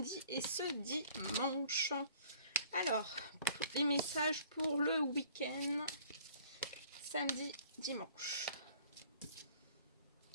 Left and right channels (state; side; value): inverted; both; correlation -0.54